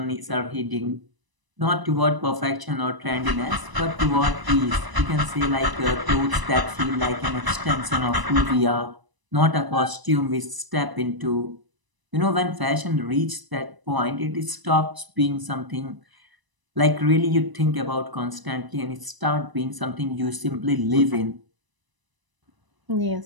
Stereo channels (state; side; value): late; left; 1.0 ms